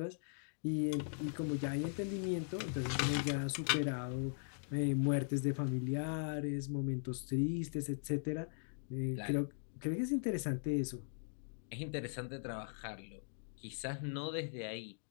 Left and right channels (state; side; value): silent; right; digital silence